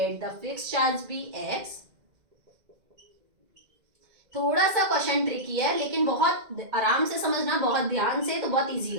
the fix charge be x। थोड़ा सा क्वेश्चन ट्रिकी है लेकिन बहुत आराम से समझना, बहुत ध्यान से, तो बहुत इजी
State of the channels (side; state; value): left; late; 2.0 ms